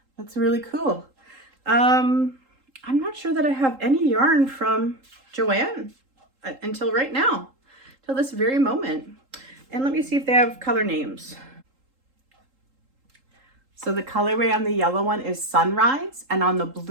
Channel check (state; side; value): late; left; 3.8 ms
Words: That's really cool. I'm not sure that I have any yarn from Joanne until right now, till this very moment. And let me see if they have color names. So the colorway on the yellow one is Sunrise, and on the